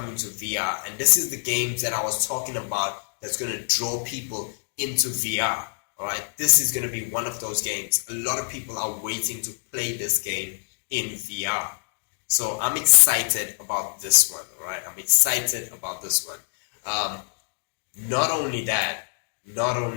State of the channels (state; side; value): silent; right; digital silence